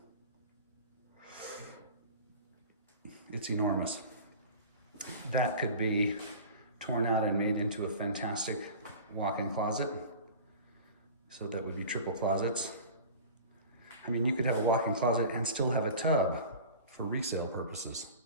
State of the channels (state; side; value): inverted; both; correlation -0.38